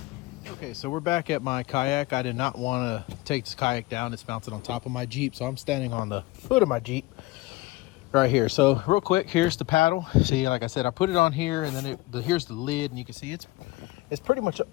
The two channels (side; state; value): right; quieter; 20.1 dB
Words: Okay, so we're back at my Kayak. I did not want to take this Kayak down. It's mounted on top of my Jeep, so I'm standing on the foot of my Jeep right here. So real quick, here's the paddle. See, like I said, I put it on here, and then here's the lid, and you can see it's pretty much